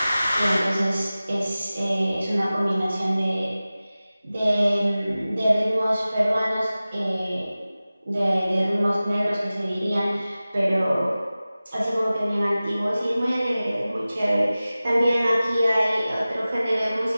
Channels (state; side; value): inverted; both; correlation -0.97